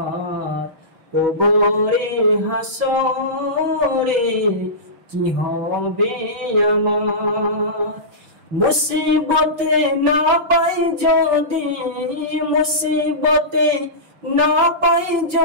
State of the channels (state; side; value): late; left; 6.1 ms